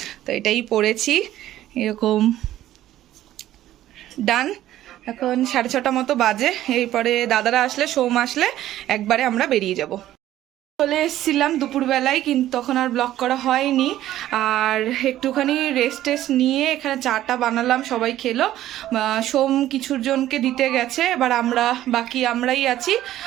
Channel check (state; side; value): quieter; left; 13.4 dB